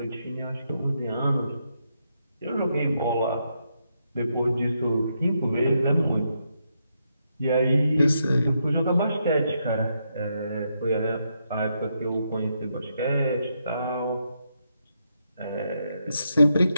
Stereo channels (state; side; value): inverted; both; correlation -0.80